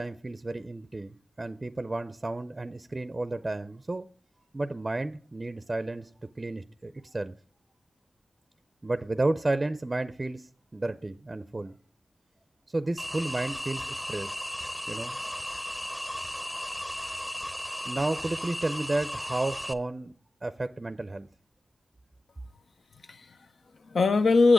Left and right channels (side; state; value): both; normal; correlation 0.95